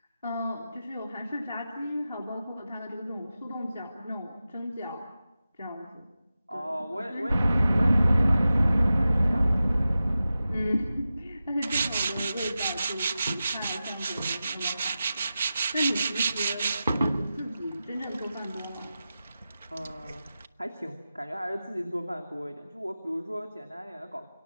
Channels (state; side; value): inverted; both; correlation -0.93